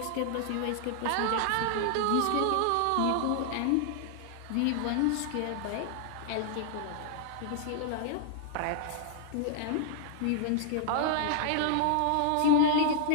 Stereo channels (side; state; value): both; different; correlation -0.01